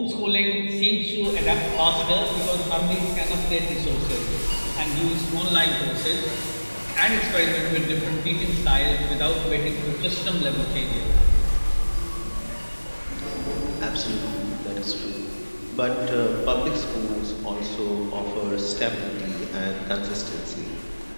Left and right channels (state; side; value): inverted; both; correlation -1.00